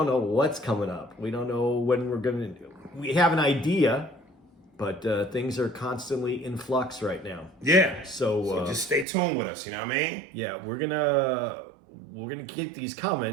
up. We don't know when we're going to. We have an idea, but things are constantly in flux right now. Yeah. So just stay tuned with us. You know what I mean? Yeah, we're gonna keep these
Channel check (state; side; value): drops out; left; at 9.1 s